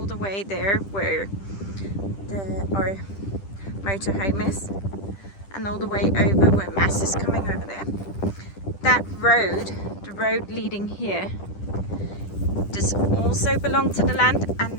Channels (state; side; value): late; right; 10 ms